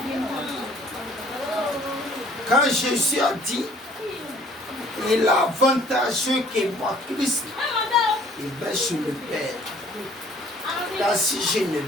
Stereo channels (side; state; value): both; normal; correlation 0.56